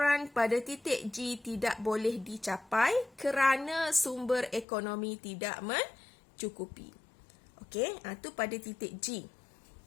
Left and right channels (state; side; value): drops out; right; at 4.7 s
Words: pada titik G tidak boleh dicapai kerana sumber ekonomi tidak mencukupi. Okey, itu pada titik G.